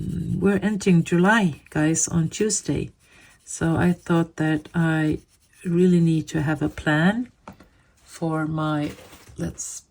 entering July, guys, on Tuesday. So I thought that I really need to have a plan for my, let's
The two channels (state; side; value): identical; both; correlation 1.00